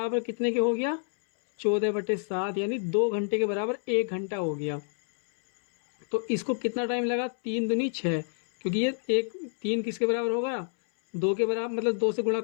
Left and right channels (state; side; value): silent; right; 59 dB below the other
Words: कितने के हो गया, 14/7, यानी 2 घंटे के बराबर 1 घंटा हो गया। तो इसको कितना टाइम लगा, 3 दूनी 6, क्योंकि ये 3 किसके बराबर होगा, 2 के बराबर, मतलब 2 से गुणा